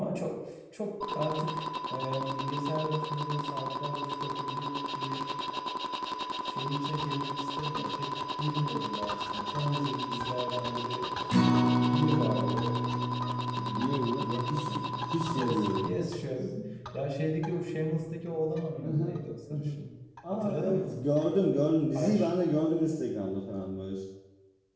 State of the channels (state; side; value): identical; both; correlation 1.00